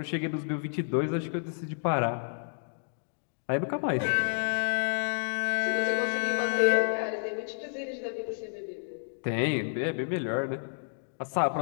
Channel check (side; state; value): right; silent; digital silence